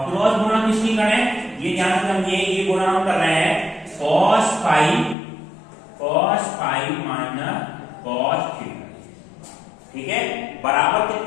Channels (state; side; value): drops out; right; at 5.2 s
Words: क्रॉस गुणा किसकी करें, ये ध्यान से समझिए, ये गुणा हम कर रहे हैं cos phi minus cos theta. ठीक है, बराबर